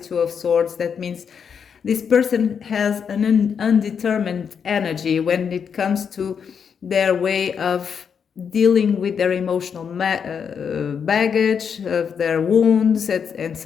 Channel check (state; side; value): quieter; right; 6.9 dB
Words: Two of Swords. That means this person has an undetermined energy when it comes to their way of dealing with their emotional baggage, of their wounds, and